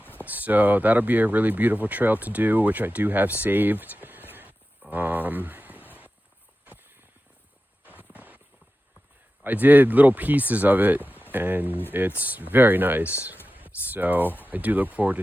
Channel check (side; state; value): both; normal; correlation 0.93